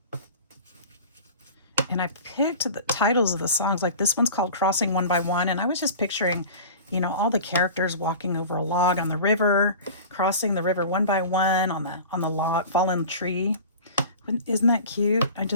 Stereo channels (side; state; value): both; inverted; correlation -0.37